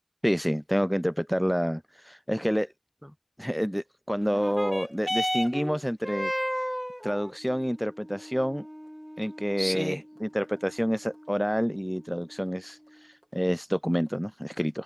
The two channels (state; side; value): identical; both; correlation 1.00